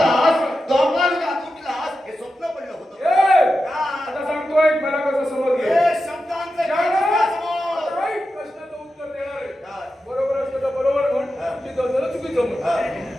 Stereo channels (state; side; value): normal; both; correlation 0.90